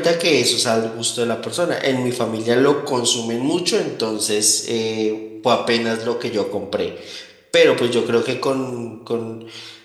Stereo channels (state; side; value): identical; both; correlation 1.00